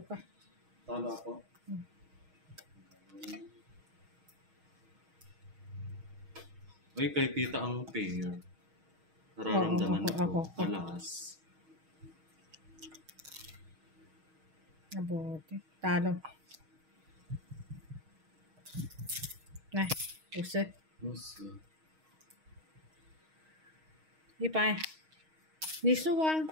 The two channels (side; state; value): left; late; 6.3 ms